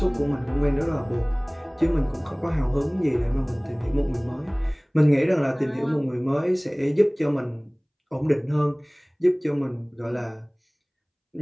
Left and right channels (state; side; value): identical; both; correlation 1.00